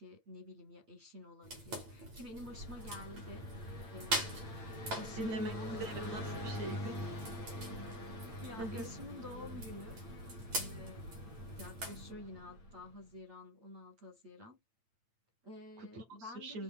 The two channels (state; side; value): late; left; 8.9 ms